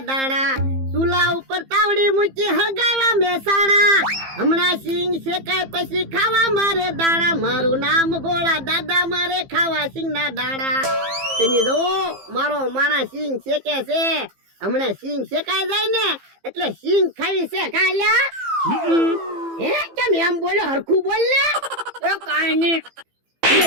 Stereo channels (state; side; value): late; left; 15 ms